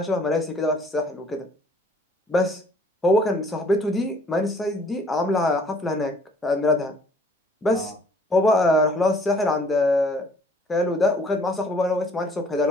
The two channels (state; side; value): normal; both; correlation 0.58